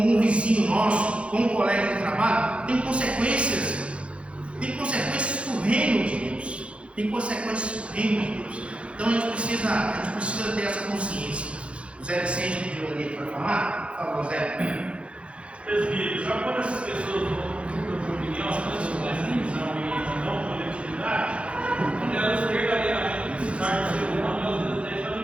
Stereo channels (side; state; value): left; late; 0.060 ms